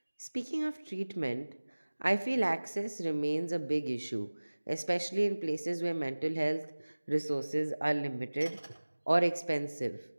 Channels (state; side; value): inverted; both; correlation -1.00